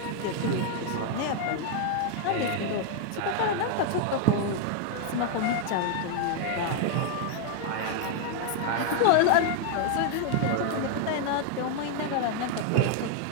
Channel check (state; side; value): different; both; correlation 0.00